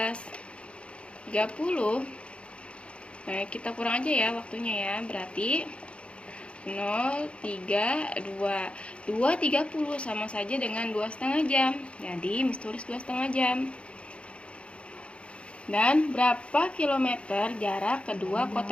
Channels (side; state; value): right; late; 0.059 ms